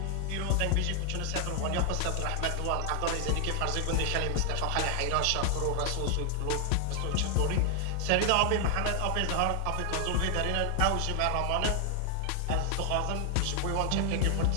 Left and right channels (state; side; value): different; both; correlation 0.00